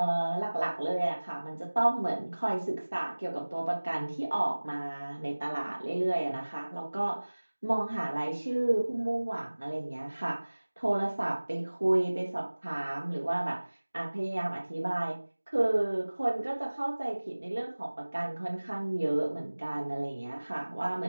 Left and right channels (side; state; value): both; inverted; correlation -1.00